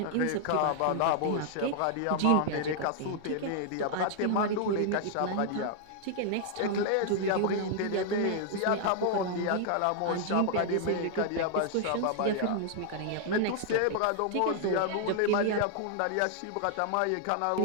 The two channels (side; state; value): both; different; correlation 0.00